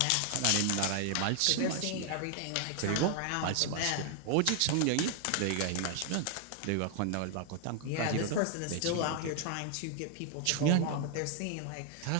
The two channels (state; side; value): different; both; correlation 0.00